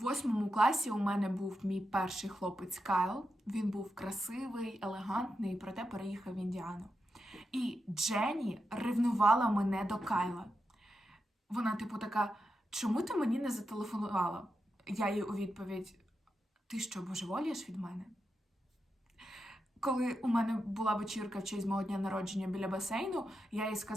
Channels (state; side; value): normal; both; correlation 0.87